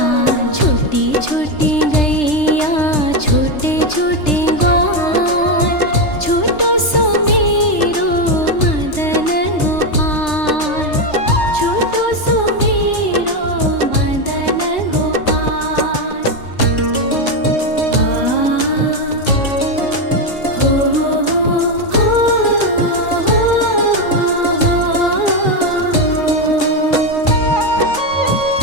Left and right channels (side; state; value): right; late; 3.3 ms